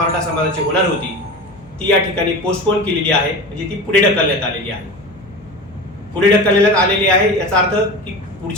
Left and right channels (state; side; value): noise; left; hum, 24 dB below the sound